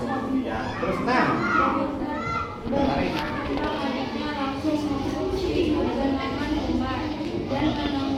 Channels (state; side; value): identical; both; correlation 1.00